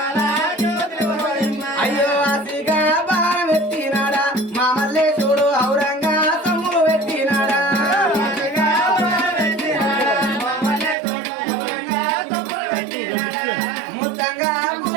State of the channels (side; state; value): left; drops out; at 11.0 s